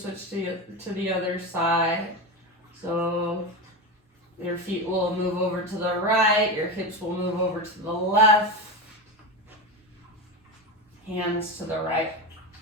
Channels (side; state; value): both; normal; correlation 0.19